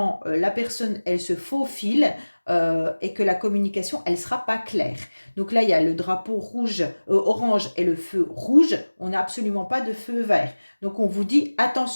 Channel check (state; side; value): inverted; both; correlation -1.00